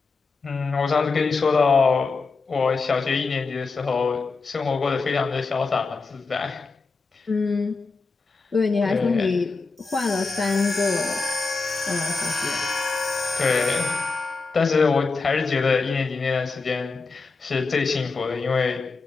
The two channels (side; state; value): right; quieter; 4.2 dB